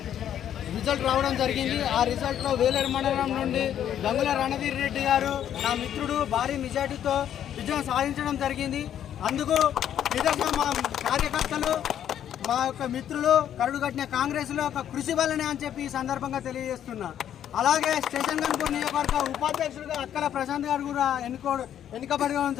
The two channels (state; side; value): quieter; right; 10.2 dB